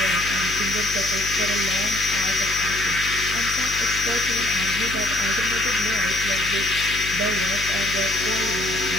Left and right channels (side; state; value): left; noise; hum, 11 dB below the sound